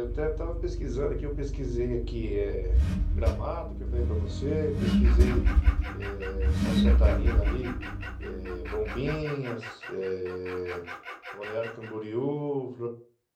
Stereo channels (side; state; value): both; identical; correlation 1.00